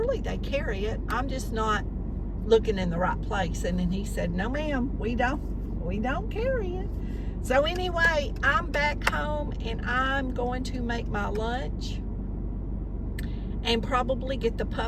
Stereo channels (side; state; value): both; identical; correlation 1.00